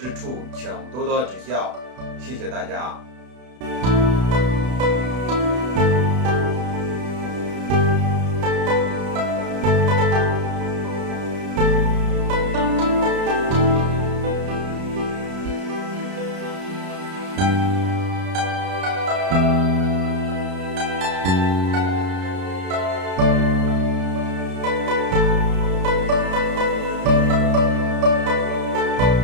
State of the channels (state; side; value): late; left; 32 ms